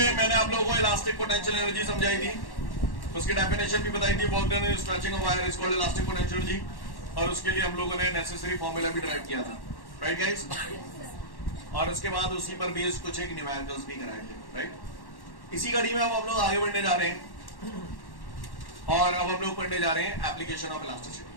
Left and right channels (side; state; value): right; late; 1.1 ms